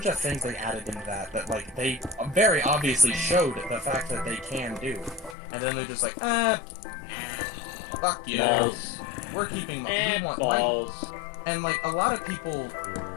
of things they added into that like they very obviously showed the fact that they can do, and then they're just like, fuck you, we're keeping we want balls. And like a lot of people,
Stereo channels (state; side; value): drops out; right; at 5.4 s